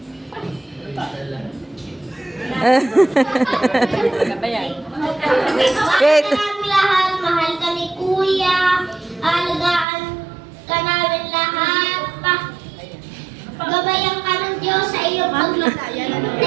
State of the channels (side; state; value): left; drops out; at 9.9 s